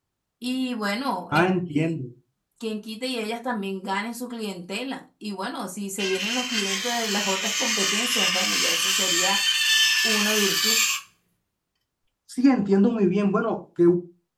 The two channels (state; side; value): identical; both; correlation 1.00